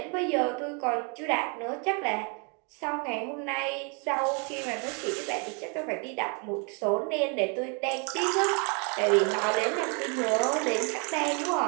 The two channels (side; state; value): left; quieter; 35.9 dB